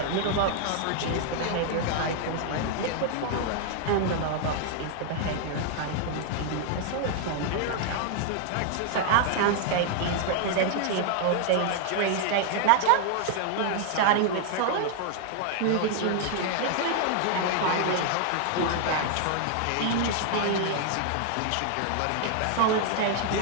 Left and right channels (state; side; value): different; both; correlation 0.00